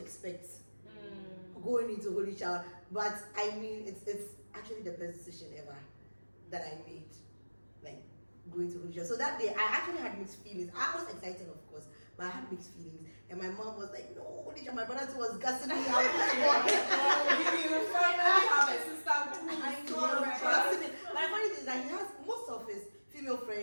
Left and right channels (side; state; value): both; inverted; correlation -1.00